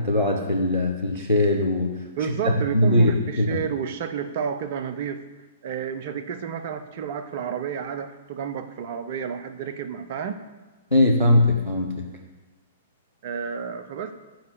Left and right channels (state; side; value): inverted; both; correlation -0.63